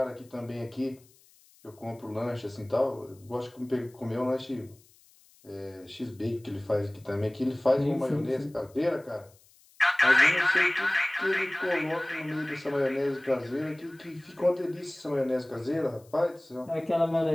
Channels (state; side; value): noise; left; hiss, 29 dB below the sound